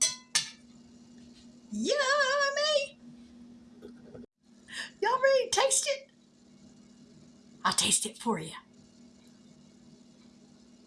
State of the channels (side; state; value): both; identical; correlation 1.00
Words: Yummy! Y'all ready to taste it? I'll taste it for you.